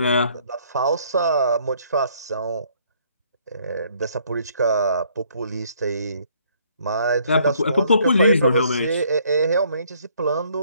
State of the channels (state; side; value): inverted; both; correlation -0.65